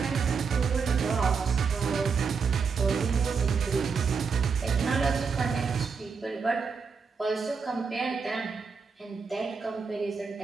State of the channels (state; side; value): quieter; left; 5.4 dB